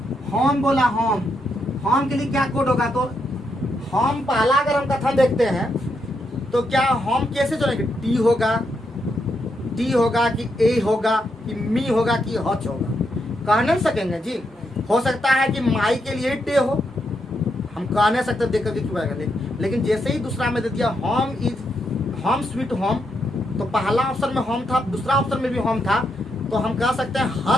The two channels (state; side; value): normal; both; correlation 0.81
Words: होम बोला, होम के लिए क्या कोड होगा? तो होम पहला अगर हम कथन देखते हैं तो क्या होम कैसे चलेंगे? टी होगा कि ए होगा कि मी होगा कि हच होगा? कह नहीं सकेंगे जी। हो सकता है कि माई के लिए टे हो, हम कह नहीं सकते देख करके क्यों आएगा। लेकिन जैसे ही दूसरा में दे दिया होम स्वीट होम, तो पहला ऑप्शन में होम था, दूसरा ऑप्शन में भी होम था, तो हम कह सकते हैं